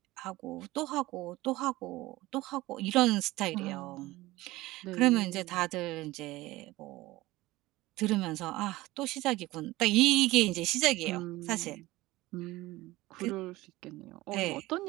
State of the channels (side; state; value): left; quieter; 18.8 dB